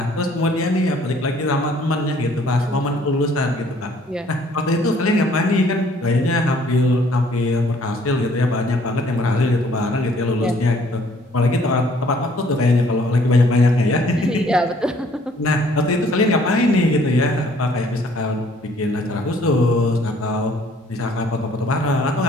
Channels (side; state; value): both; normal; correlation 0.60